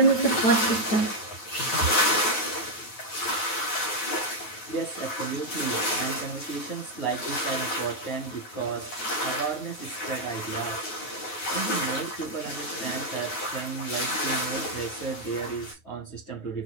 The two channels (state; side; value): late; right; 9.3 ms